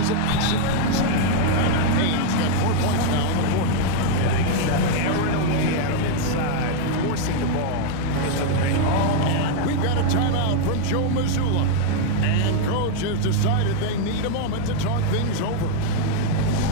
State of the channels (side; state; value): both; different; correlation 0.00